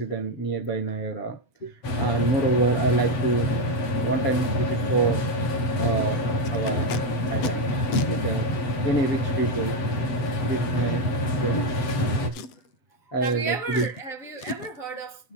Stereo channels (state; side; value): late; right; 7.9 ms